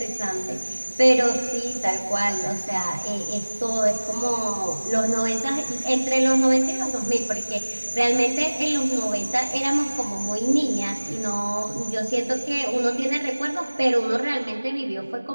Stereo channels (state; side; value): inverted; both; correlation -1.00